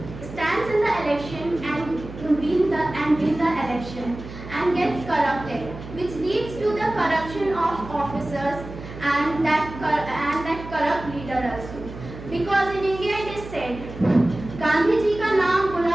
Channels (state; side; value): noise; right; hum, 13 dB below the sound